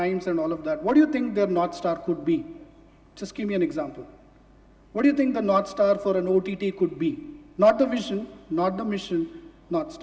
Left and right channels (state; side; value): identical; both; correlation 1.00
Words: and all of that, what do you think their North Star could be? Just give me an example. What do you think the North Star for an OTT could be? Not the vision, not the mission, North